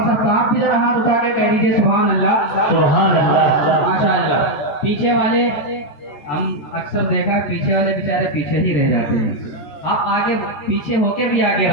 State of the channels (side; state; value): right; late; 14 ms